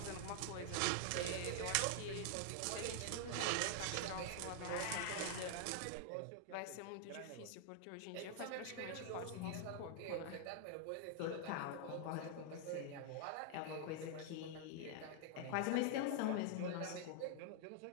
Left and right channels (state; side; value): different; both; correlation 0.00